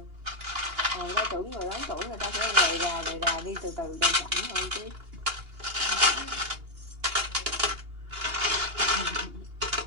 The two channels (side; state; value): left; late; 2.8 ms